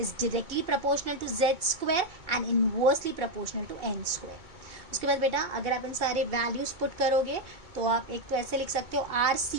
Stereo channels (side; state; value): left; late; 2.2 ms